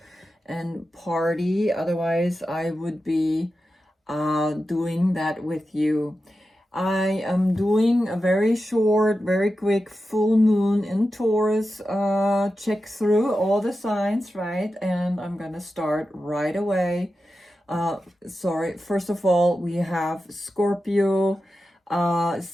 and party. Otherwise, I would be doing that with you. I am doing a very short, very quick full moon in Taurus check through all the signs, right? And I'm gonna start right away. First of all, we have Scorpio.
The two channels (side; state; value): both; normal; correlation 0.91